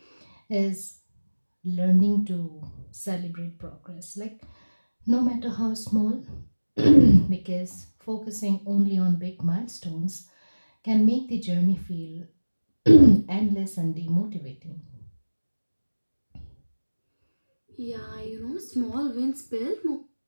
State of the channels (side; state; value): both; inverted; correlation -1.00